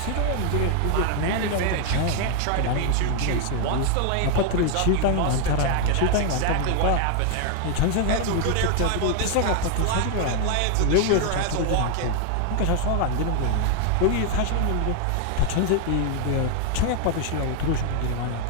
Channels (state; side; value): different; both; correlation 0.00